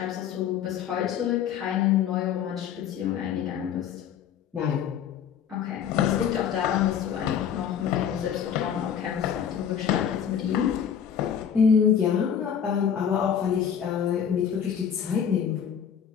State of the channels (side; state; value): right; quieter; 8.3 dB